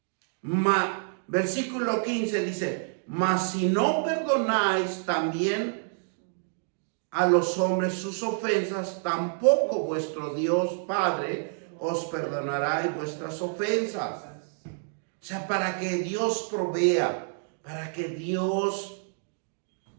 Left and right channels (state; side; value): silent; left; digital silence